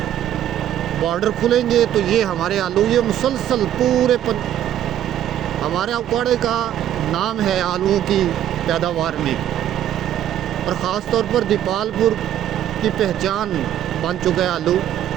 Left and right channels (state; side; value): quieter; left; 11.2 dB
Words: बॉर्डर खुलेंगे तो ये हमारे आलू ये मुसलसल पूरे हमारे अकवाड़े का नाम है आलूओं की पैदावार में, और ख़ास तौर पर दीपालपुर की पहचान बन चुका है आलू।